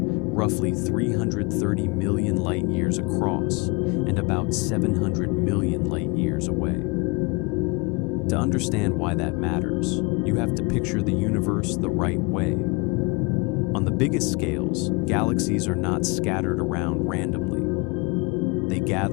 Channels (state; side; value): quieter; right; 28.5 dB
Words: 330 million light-years across and about 700 million light-years away. To understand why that matters, you have to picture the universe the right way. On the biggest scales, galaxies are not scattered around randomly. They